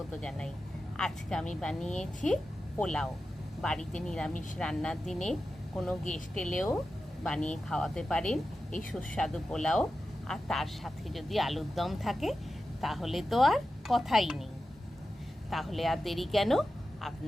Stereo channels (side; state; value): both; normal; correlation 0.92